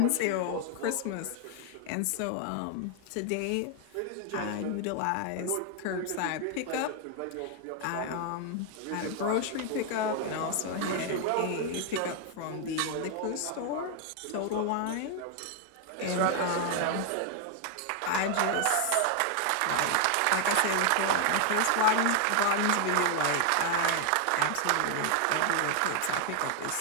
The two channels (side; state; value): both; different; correlation 0.00